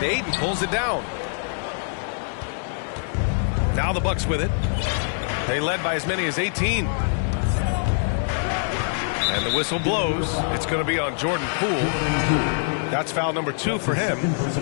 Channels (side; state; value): right; silent; digital silence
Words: Ayton pulls it down. Now the Bucks with it. They led by as many as 18. And the whistle blows. It's going to be on Jordan Poole. That's foul number 2 for him.